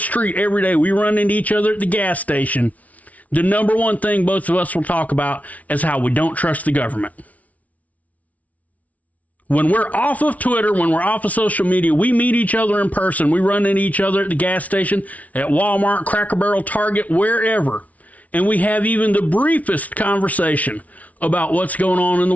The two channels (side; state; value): right; late; 0.070 ms